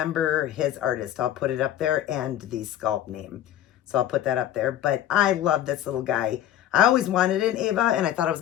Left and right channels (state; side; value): quieter; right; 11.7 dB